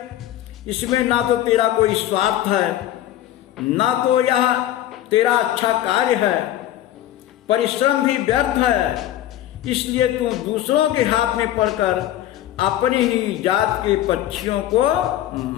इसमें ना तो तेरा कोई स्वार्थ है, ना तो यह तेरा अच्छा कार्य है, परिश्रम भी व्यर्थ है। इसलिए तू दूसरों के हाथ में पड़कर अपनी ही जात के पक्षियों को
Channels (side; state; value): right; quieter; 12.8 dB